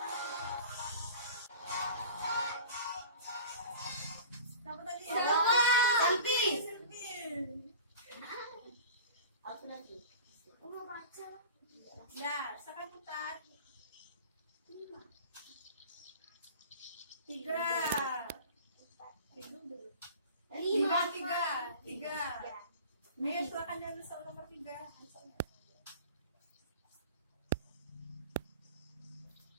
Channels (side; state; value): both; inverted; correlation -0.40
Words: Siapa tadi? Selfie. Selfie. Aku nanti. Aku mau baca. Ya, silakan putar. 5. 3. Lima. Tiga. Ayo silakan diambil soal nomor 3.